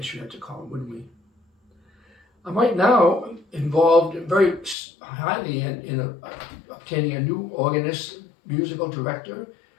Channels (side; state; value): right; drops out; at 4.8 s